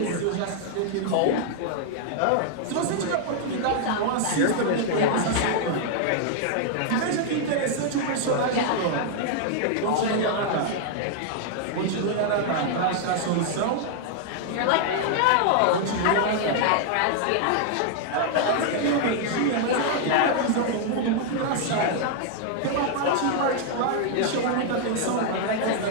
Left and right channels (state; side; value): different; both; correlation -0.01